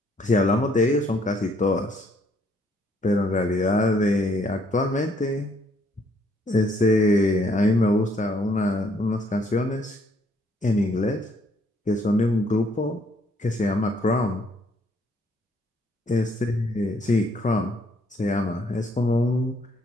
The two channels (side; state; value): both; normal; correlation 0.67